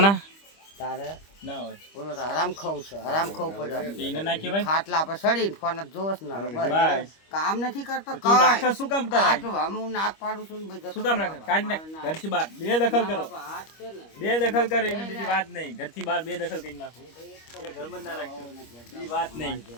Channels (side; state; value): right; late; 25 ms